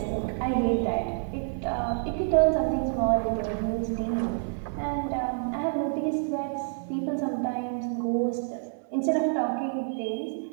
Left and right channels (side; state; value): left; silent; digital silence